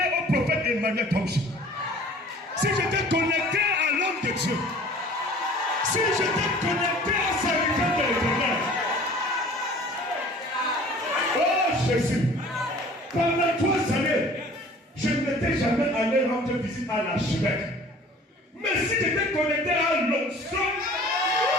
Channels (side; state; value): both; normal; correlation 0.48